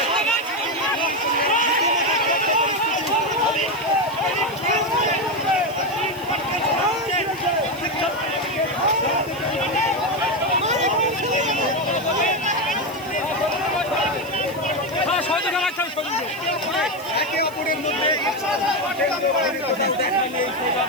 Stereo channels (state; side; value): noise; right; hiss, 20 dB below the sound